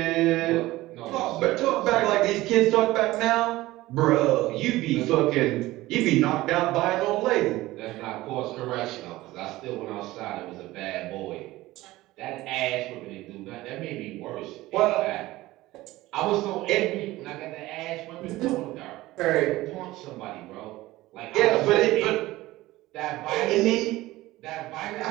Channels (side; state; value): left; quieter; 17.8 dB